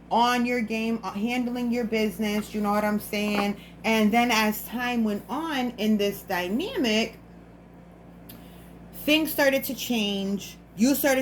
your game, handling your business, you know what I'm saying? And then as time went on in this dynamic, things started to change. You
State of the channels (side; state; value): both; identical; correlation 1.00